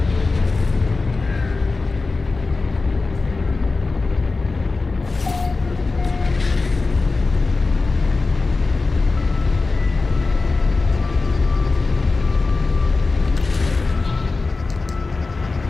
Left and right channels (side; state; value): right; quieter; 3.8 dB